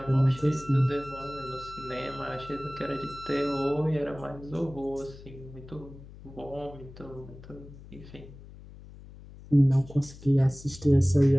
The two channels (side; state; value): left; noise; hum, 18 dB below the sound